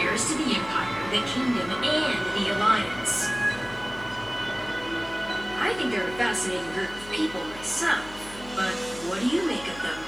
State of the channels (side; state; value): left; noise; hum, 18 dB below the sound